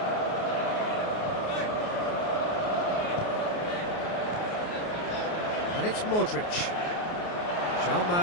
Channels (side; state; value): right; late; 28 ms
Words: And it's Modric. João